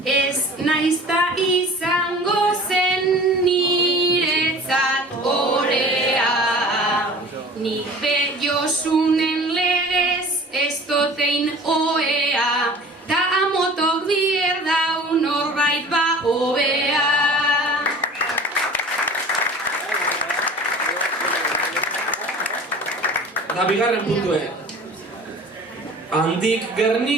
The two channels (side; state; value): both; normal; correlation 0.43